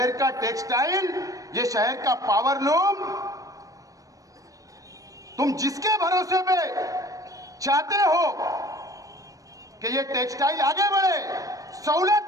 का टेक्सटाइल, ये शहर का पावरलूम, तुम जिसके भरोसे पे चाहते हो कि ये टेक्सटाइल आगे बढ़े, सहूलत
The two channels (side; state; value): left; late; 0.16 ms